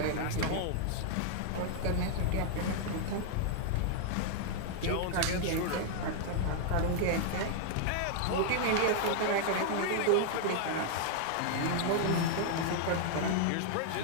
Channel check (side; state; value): both; different; correlation -0.01